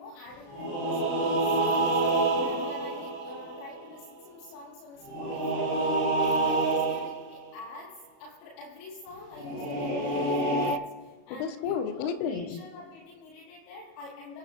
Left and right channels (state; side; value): late; right; 36 ms